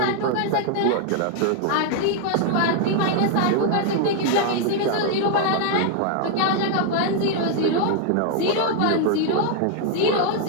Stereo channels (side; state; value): both; different; correlation 0.00